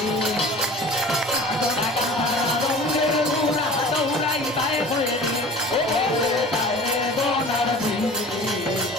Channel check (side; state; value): both; normal; correlation 0.41